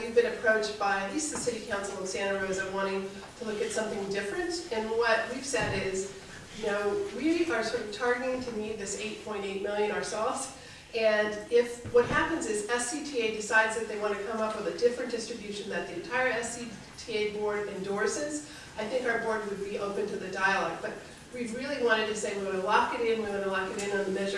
been approached by at least the City Council of Santa Rosa wanting to look at something different. And what we've said is, you know, we are sort of targeting to need this 8.8 million ourselves. And if what happens is SCTA decides that they want to come up with a different distribution that the entire SCTA board endorses, I think our board would be open to the dialogue. But we really wanted to say we want to lock it in, we want to lock it in on the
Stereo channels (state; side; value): identical; both; correlation 1.00